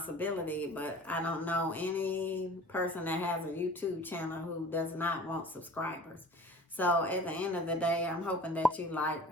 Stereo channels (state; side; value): normal; both; correlation 0.43